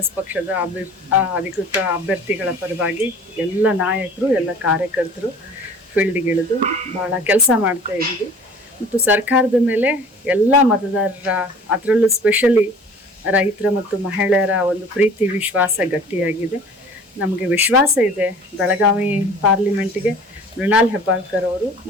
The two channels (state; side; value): normal; both; correlation 0.46